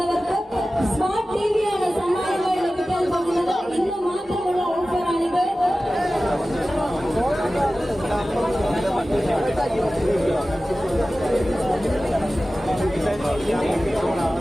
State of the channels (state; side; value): normal; both; correlation 0.96